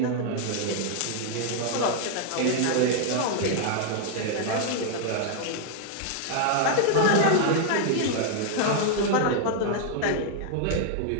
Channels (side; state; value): both; different; correlation 0.00